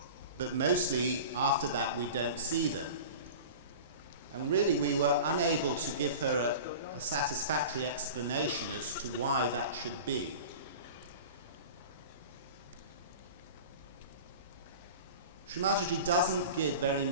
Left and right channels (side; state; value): both; inverted; correlation -0.36